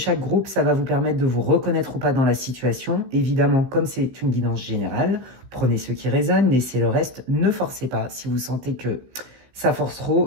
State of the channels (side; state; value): left; late; 16 ms